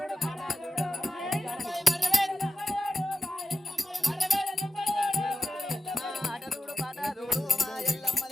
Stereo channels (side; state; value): both; normal; correlation 0.93